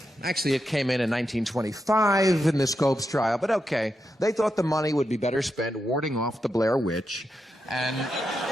Actually, it came in 1925 in the Scopes trial, but okay. They thought the money would be better spent warding off the Blair Witch and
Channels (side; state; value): both; normal; correlation 0.86